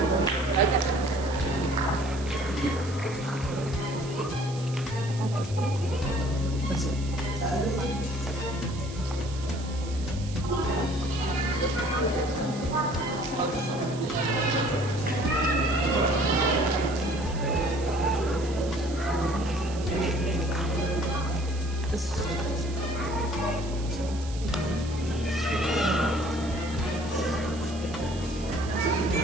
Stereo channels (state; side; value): noise; right; hiss, 16 dB below the sound